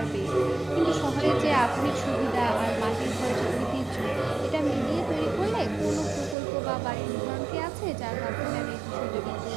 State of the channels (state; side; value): drops out; left; at 6.4 s